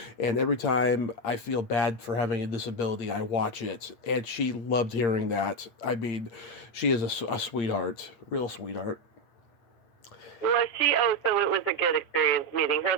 And every time I feel bad for having a disability, I watch it. And she loved hearing that. I mean, she is a sweetheart, real sweetheart. Was she? Oh, so it was a good experience meeting her.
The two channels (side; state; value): right; late; 8.6 ms